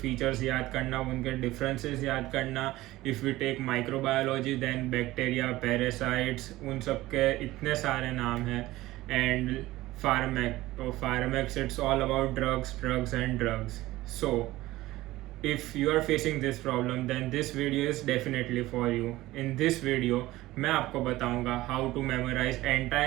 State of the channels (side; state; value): left; quieter; 17.5 dB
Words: फीचर्स याद करना, उनके डिफरेंसेस याद करना. If you take microbiology, then bacteria, parasites, उन सब के इतने सारे नाम हैं. And pharmacs it's all about drugs and drugs. So if you are facing this problem, then this video is definitely for you. In this video मैं आपको बताऊंगा how to memorize